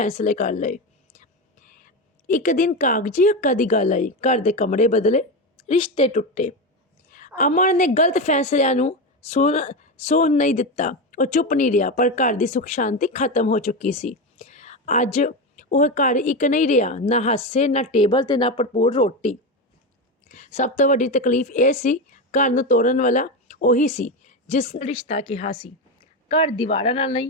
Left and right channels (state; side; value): normal; both; correlation 0.16